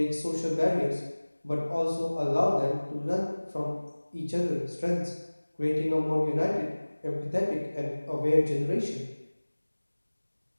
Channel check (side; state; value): both; inverted; correlation -1.00